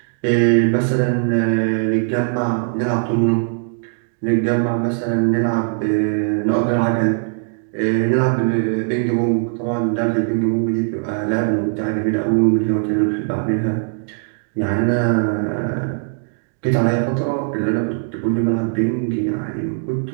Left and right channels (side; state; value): left; silent; digital silence